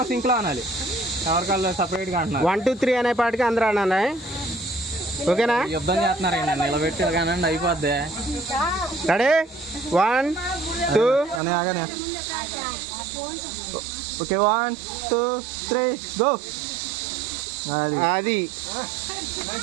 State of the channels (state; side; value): drops out; left; at 11.4 s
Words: సింక్లో అనాలి, ఎవరికాళ్ళు సపరేట్గా అంటున్నారు. 1 2 3 అనే పాటికి అందరూ అనాలి. ఓకేనా? యుద్ధం చేస్తున్నారండి, నిలబెట్టి కానండి అయిపోద్ది. రెడీ 1 2 అని ఆగానే. Okay 1 2 3 go. అది